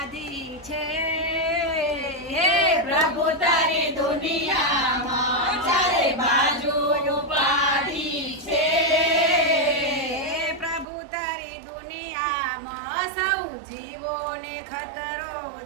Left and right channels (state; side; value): drops out; left; at 10.9 s